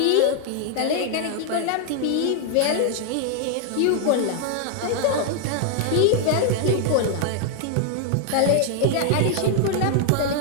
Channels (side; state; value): both; different; correlation 0.00